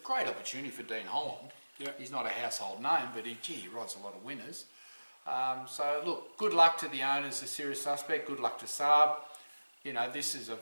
opportunity for Dean Holland. Yeah. He's not a household name, but he rides a lot of winners. So look, good luck to the owners of Serious Suspect. Good luck to Saab. You know, this is a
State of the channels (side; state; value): both; inverted; correlation -1.00